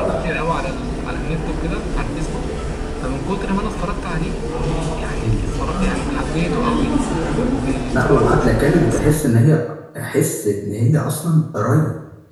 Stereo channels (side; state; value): both; identical; correlation 1.00